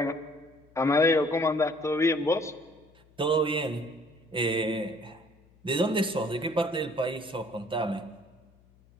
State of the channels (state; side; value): noise; left; hum, 30 dB below the sound